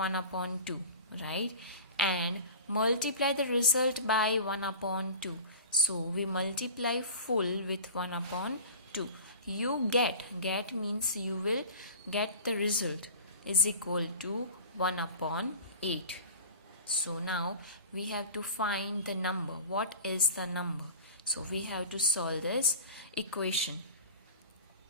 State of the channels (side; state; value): both; inverted; correlation -0.37